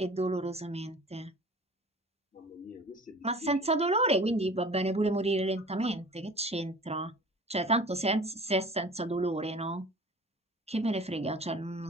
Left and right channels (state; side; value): normal; both; correlation 0.43